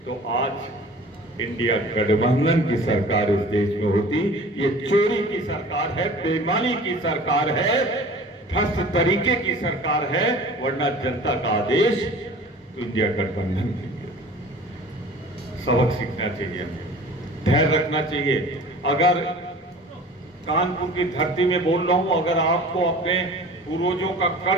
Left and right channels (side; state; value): both; normal; correlation 0.43